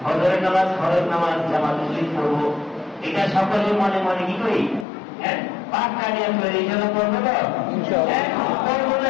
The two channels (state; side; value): drops out; right; at 4.9 s